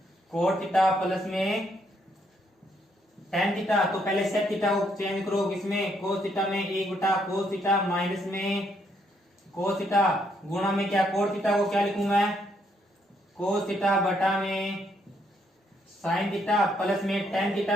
कोट थीटा प्लस में टेन थीटा। तो पहले सेक थीटा को चेंज करो किसमें, कोस थीटा में, 1 बटा कोस थीटा माइनस में कोस थीटा गुणा में क्या, कोट थीटा को क्या लिखूं मैं, कोस थीटा बटा में साइन थीटा प्लस में टेन थीटा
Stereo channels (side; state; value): both; normal; correlation 0.73